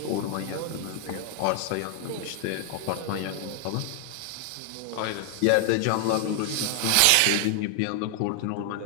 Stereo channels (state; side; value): different; both; correlation 0.00